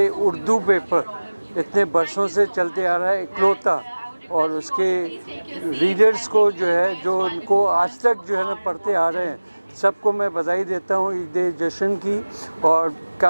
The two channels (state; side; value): inverted; both; correlation -1.00